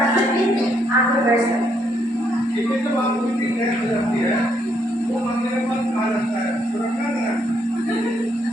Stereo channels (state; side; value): normal; both; correlation 0.73